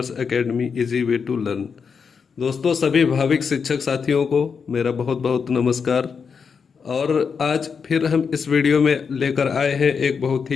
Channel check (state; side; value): quieter; right; 6.0 dB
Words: academy easy way to learn. दोस्तों, सभी भाविक शिक्षक साथियों को मेरा बहुत बहुत नमस्कार। और आज फिर हम इस वीडियो में लेकर आए हैं एक बहुत